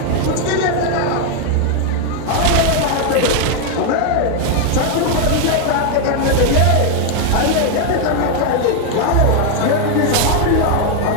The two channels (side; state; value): both; different; correlation 0.01